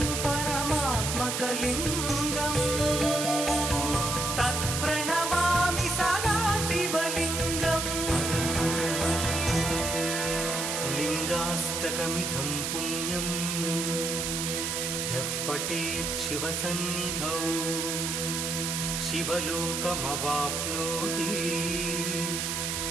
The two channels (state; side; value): noise; right; hiss, 1 dB below the sound